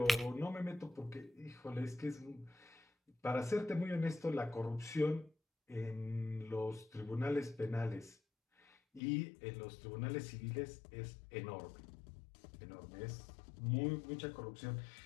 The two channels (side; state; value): right; drops out; at 9.0 s